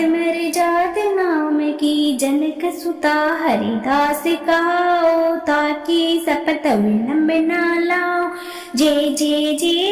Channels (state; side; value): identical; both; correlation 1.00